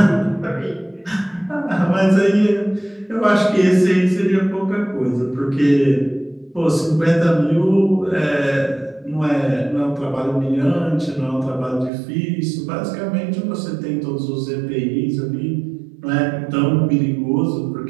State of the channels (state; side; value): drops out; left; at 11.9 s